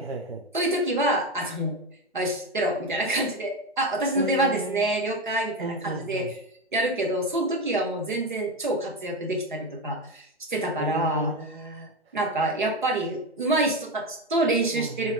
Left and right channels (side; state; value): both; normal; correlation 0.16